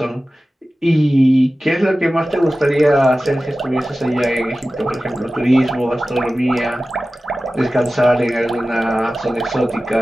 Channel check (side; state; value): both; normal; correlation 0.96